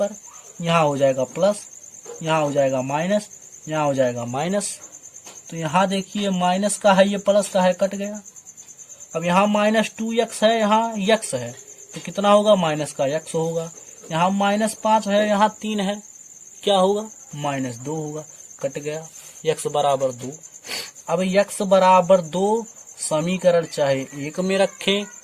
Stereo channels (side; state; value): both; identical; correlation 1.00